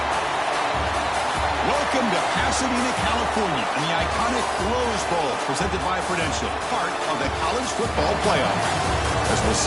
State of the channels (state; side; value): identical; both; correlation 1.00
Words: Welcome to Pasadena, California, and the iconic Rose Bowl, presented by Prudential, part of the college football playoff. As we'll